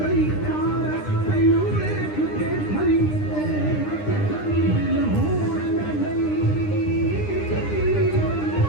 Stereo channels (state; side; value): late; right; 9.9 ms